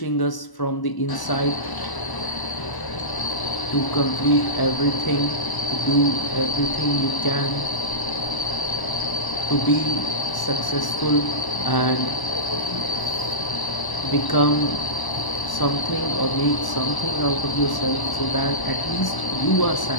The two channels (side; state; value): right; late; 1.0 ms